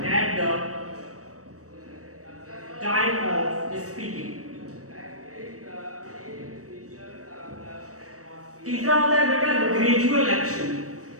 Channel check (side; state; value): left; late; 0.65 ms